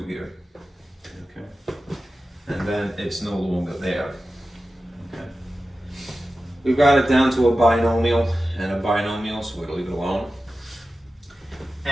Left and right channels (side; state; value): both; normal; correlation 0.94